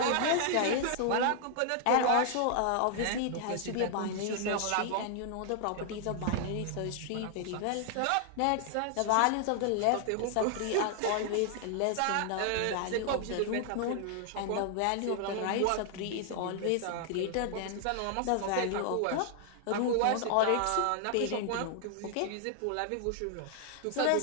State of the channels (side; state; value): both; different; correlation 0.00